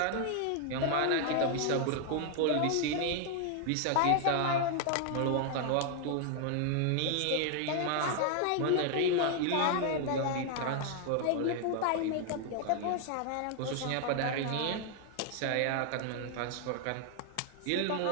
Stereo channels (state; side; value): different; both; correlation 0.00